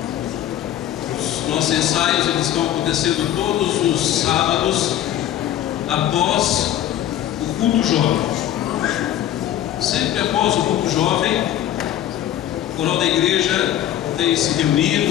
Os nossos ensaios eles estão acontecendo todos os sábados após o culto jovem. Sempre após o culto jovem, o coral da igreja tem se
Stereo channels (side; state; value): right; quieter; 11.8 dB